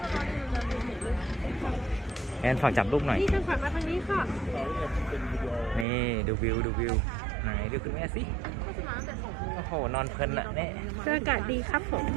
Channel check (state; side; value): drops out; left; at 5.9 s